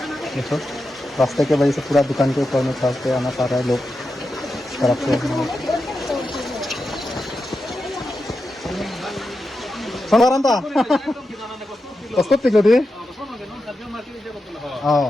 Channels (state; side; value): normal; both; correlation 0.89